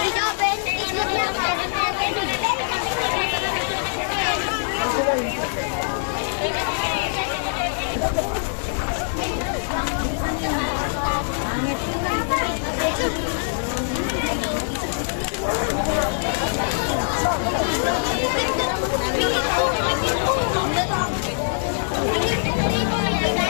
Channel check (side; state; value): right; silent; digital silence